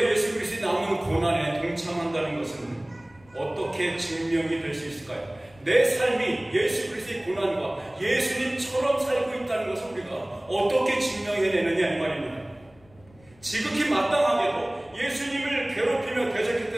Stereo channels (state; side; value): noise; left; rumble, 28 dB below the sound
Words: 예수 그리스도의 남은 고난에 동참한다는 것은 어떻게 증명이 될 수 있을까요? 내 삶이 예수 그리스도의 고난과 예수님처럼 살고 있다는 것을 우리가 어떻게 증명해내느냐 이 말입니다. 지극히 마땅하게도 예수님을 괴롭히며